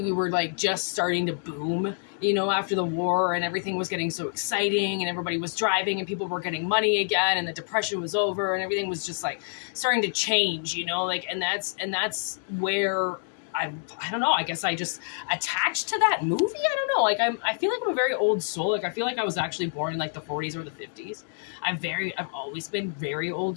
we were, like, just starting to boom, you know, after the war, and everything was getting so exciting, and everybody was driving, and people were getting money again, and the depression was over, and everything was just, like, starting to change, you know, like, and that's where I don't know, I guess I just attached to that movie. I don't know, like, I feel like I'm a very old soul. Like, I feel like I was actually born in, like, the 40s or the 50s. I've always been very old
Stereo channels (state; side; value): silent; right; digital silence